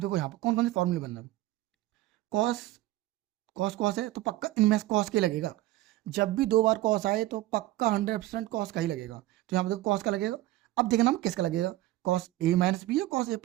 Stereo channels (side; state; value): left; quieter; 16.6 dB